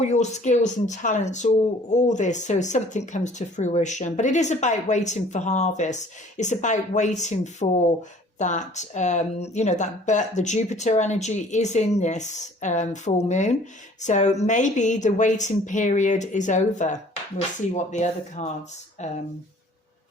your skills and talents, all this, so something comes to fruition. But it is about waiting for harvest. It's about waiting for that, but the Jupiter energy is in this full moon. So maybe the waiting period is over. We'll see what the other cards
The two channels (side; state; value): both; normal; correlation 0.53